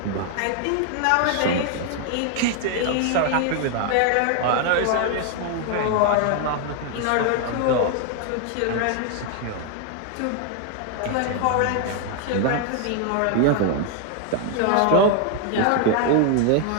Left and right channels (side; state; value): both; different; correlation 0.00